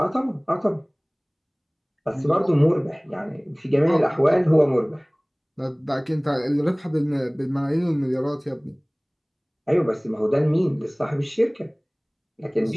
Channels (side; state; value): both; identical; correlation 1.00